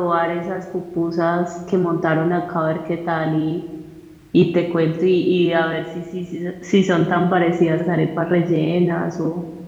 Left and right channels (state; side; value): identical; both; correlation 1.00